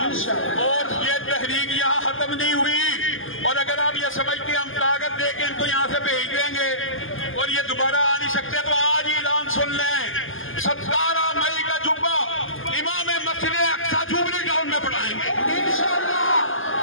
اور یہ تحریک یہاں ختم نہیں ہوئی۔ اور اگر آپ یہ سمجھتے ہیں ہم کاغذ دے کے ان کو یہاں سے بھیج دیں گے اور یہ دوبارہ آ نہیں سکتے، تو آج ہی اعلان سن لیں، 17 مئی کا جمعہ امام مسجد اقصی جوبلی ٹاؤن میں پڑھائیں گے انشاءاللہ۔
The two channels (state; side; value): late; right; 0.59 ms